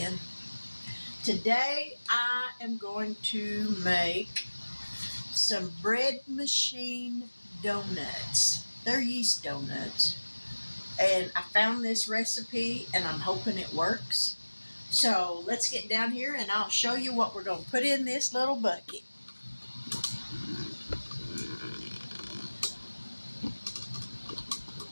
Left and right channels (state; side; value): inverted; both; correlation -1.00